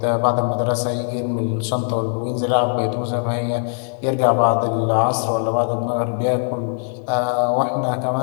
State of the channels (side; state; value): right; silent; digital silence